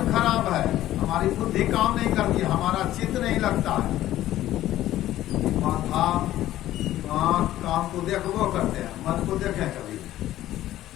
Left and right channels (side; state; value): right; quieter; 14.0 dB